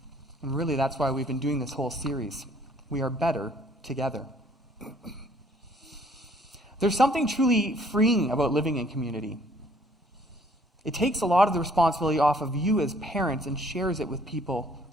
And really, that's why we've been doing this whole series. We are better together. There's something truly freeing about living in community. It takes a lot of the responsibility off of you as parents and shares it with people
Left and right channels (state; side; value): normal; both; correlation 0.60